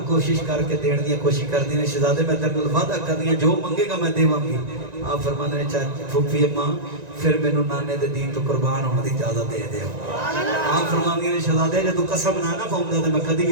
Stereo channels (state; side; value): late; left; 1.9 ms